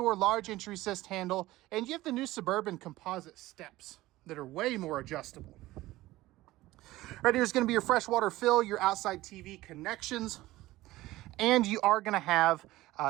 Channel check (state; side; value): quieter; left; 17.5 dB